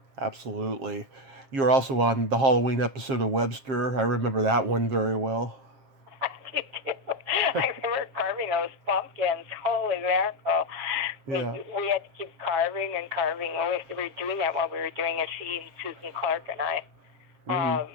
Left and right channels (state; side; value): late; left; 7.5 ms